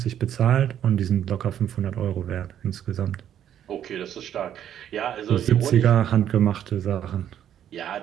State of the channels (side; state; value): left; quieter; 10.2 dB